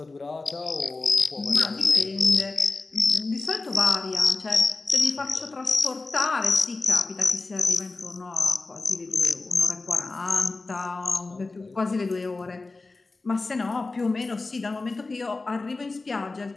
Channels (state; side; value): quieter; right; 3.5 dB